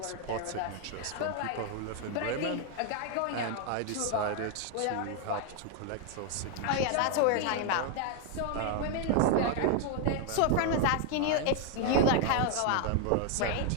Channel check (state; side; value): different; both; correlation 0.00